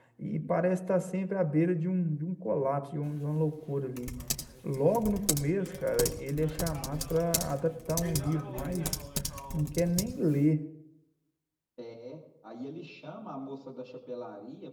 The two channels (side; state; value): both; identical; correlation 1.00